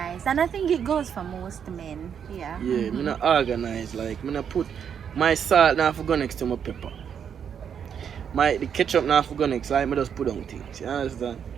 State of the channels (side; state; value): left; quieter; 7.9 dB